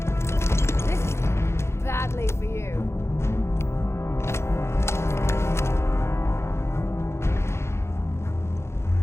This is badly for you.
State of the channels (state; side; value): late; right; 0.13 ms